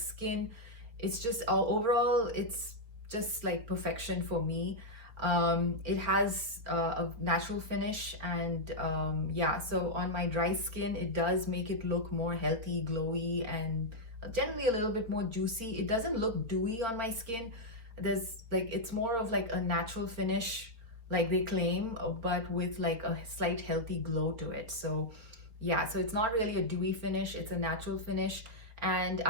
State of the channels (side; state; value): left; late; 4.3 ms